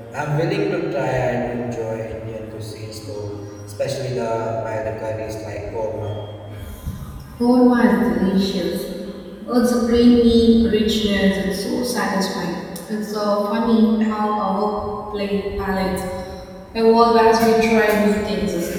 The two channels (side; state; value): both; identical; correlation 1.00